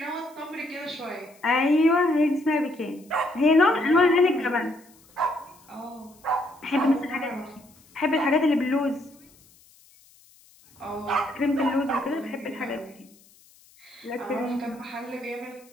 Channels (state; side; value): noise; left; hiss, 28 dB below the sound